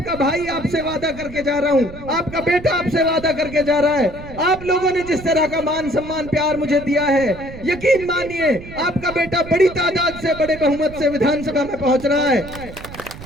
भाई आपसे वादा करके जा रहा हूं, आपका बेटा आपसे वादा करके जा रहा है। आप लोगों ने जिस तरह का मान सम्मान प्यार मुझे दिया है, यकीन मानिए आपका बेटा बड़ी तादाद से, बड़े बहुमत से विधानसभा में पहुंच रहा है।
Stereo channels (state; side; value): noise; right; rumble, 14 dB below the sound